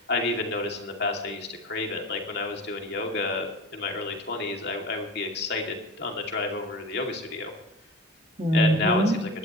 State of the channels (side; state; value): both; normal; correlation 0.32